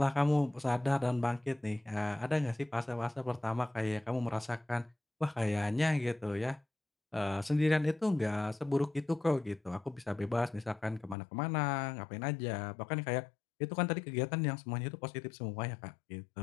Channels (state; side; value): drops out; right; at 11.2 s